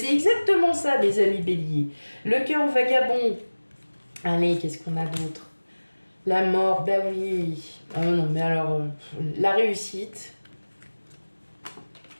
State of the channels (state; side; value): inverted; both; correlation -1.00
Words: exactement ça, mes amis béliers. Le cœur vagabond. Allez, qu'est-ce qu'on a d'autre? La mort, bah oui. Oh non, mais alors, la réussite.